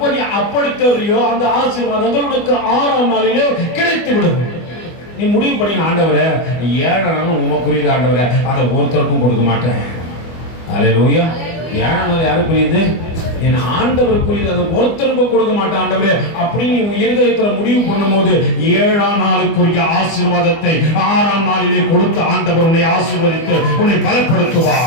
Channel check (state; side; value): late; right; 24 ms